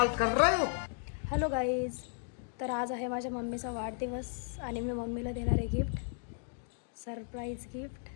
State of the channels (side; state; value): right; silent; 55 dB below the other